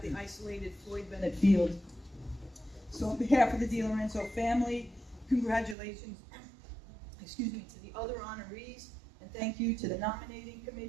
the isolated Floyd Bennett Field. So on behalf of the DeLorenzo family, congratulations, to the other honorees. And thank you to the nominating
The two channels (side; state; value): left; drops out; at 5.8 s